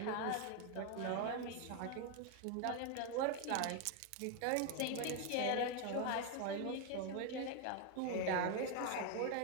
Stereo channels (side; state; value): both; different; correlation 0.01